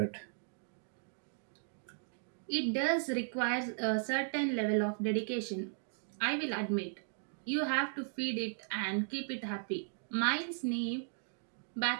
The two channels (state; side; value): silent; left; digital silence